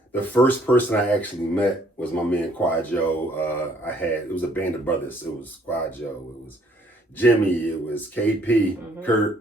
first person I actually met was my man Quad Joe. It was a band of brothers. It was Quad Joe, it was Jimmy, it was KP,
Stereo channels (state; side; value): normal; both; correlation 0.63